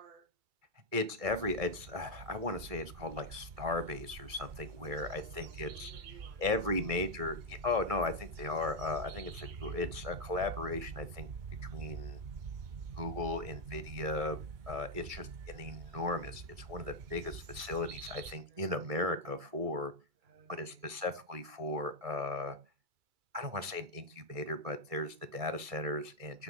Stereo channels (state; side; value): late; left; 2.3 ms